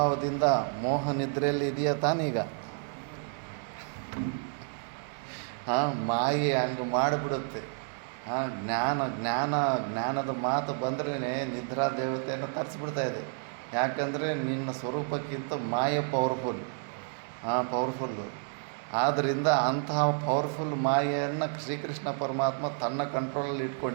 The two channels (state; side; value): silent; left; 56 dB below the other